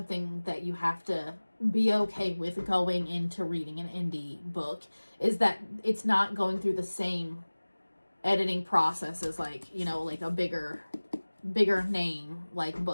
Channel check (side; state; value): both; inverted; correlation -1.00